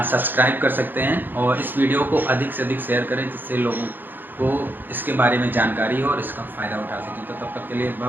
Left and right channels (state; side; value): late; left; 0.092 ms